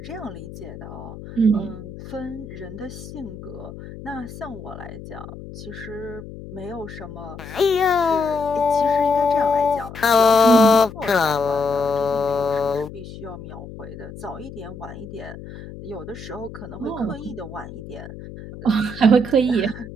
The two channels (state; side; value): noise; left; hum, 13 dB below the sound